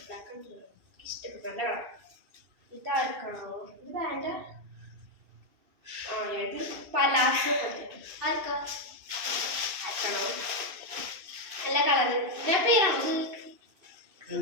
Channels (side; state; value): left; late; 2.5 ms